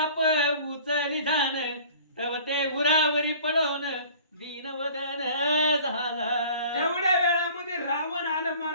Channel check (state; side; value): inverted; both; correlation -0.47